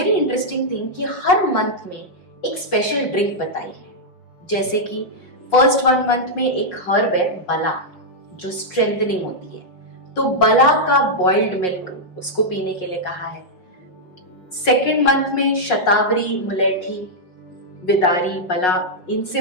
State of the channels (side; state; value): right; late; 5.5 ms